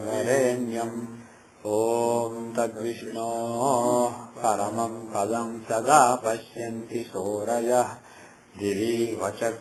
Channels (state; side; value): identical; both; correlation 1.00